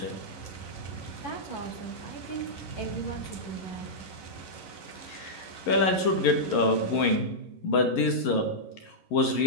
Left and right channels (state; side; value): late; right; 11 ms